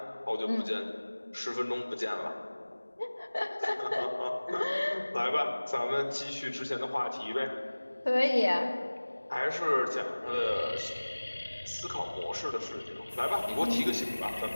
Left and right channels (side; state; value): both; inverted; correlation -1.00